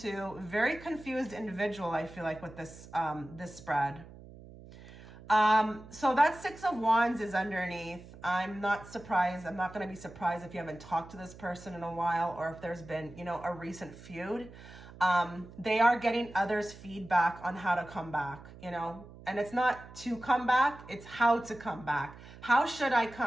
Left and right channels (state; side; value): noise; right; hum, 18 dB below the sound